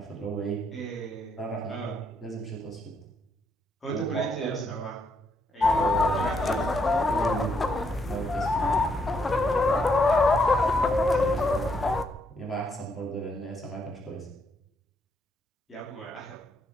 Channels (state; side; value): normal; both; correlation 0.75